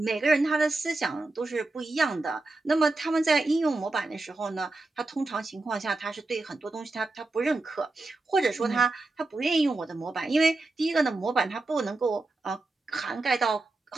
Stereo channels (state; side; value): quieter; left; 3.1 dB